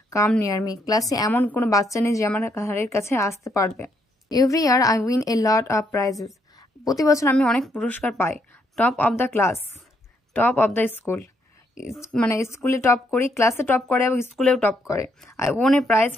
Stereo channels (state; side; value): normal; both; correlation 0.74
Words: come near me. ক্লাসে এমন কোনো বাচ্চা নেই যে আমার ঘাড়ের কাছে আসতে পারবে. Every year I win a lot of prizes. প্রতি বছর আমি অনেক পুরস্কার পাই. Top of the class, top of the school. মানে স্কুলে টপ করি, ক্লাসে টপ করে এবং স্কুলেও টপ করে. I won a prize